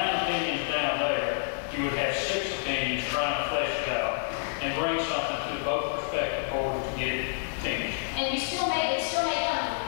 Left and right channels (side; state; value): right; silent; digital silence